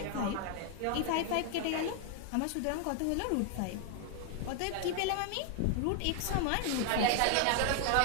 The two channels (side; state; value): both; different; correlation 0.00